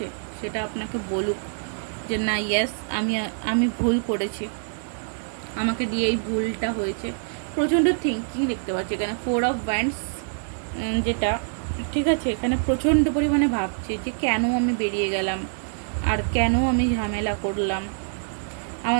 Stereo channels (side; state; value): left; silent; digital silence